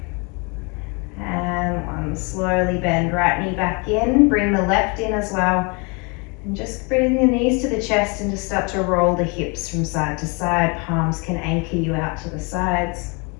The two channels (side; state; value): right; quieter; 31.6 dB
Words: and 1. Slowly bend right knee back in, bring the left in as well. And just bring the knees to the chest and just start to roll the hips from side to side. Palms can anchor you out to the sides.